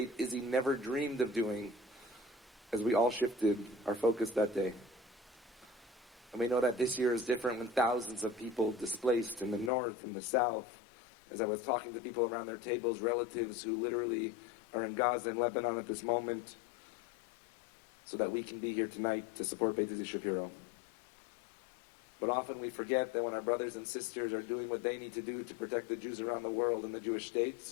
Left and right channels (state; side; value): drops out; right; at 9.7 s